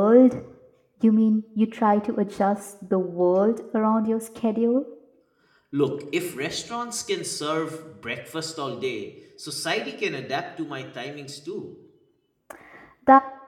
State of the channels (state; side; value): identical; both; correlation 1.00